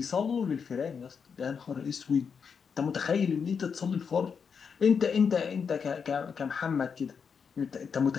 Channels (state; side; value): quieter; right; 6.3 dB